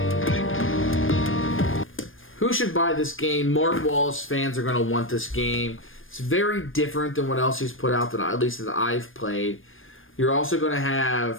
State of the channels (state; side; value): late; right; 0.59 ms